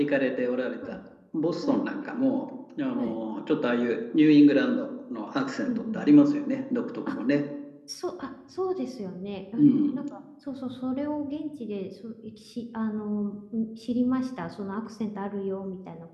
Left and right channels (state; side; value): identical; both; correlation 1.00